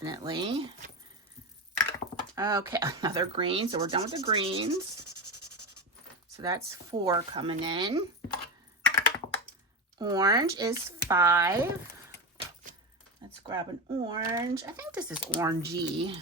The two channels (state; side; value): normal; both; correlation 0.19